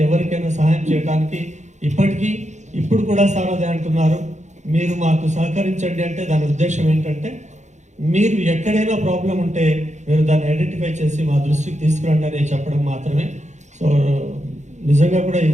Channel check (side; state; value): left; late; 0.34 ms